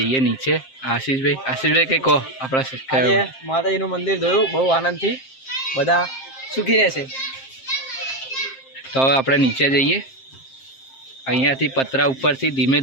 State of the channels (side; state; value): right; late; 7.6 ms